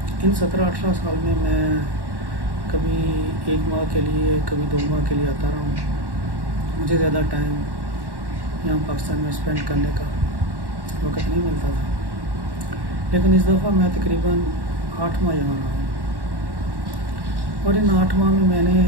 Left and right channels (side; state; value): left; late; 1.1 ms